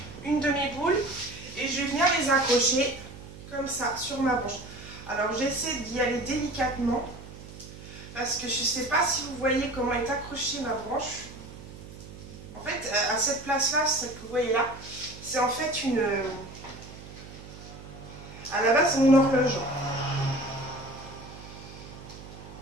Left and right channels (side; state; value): right; noise; hum, 15 dB below the sound